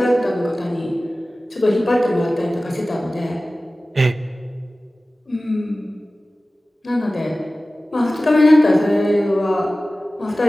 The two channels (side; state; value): both; normal; correlation 0.97